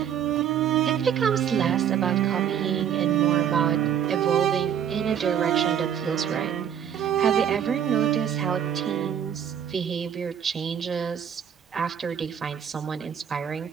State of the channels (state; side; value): quieter; left; 8.8 dB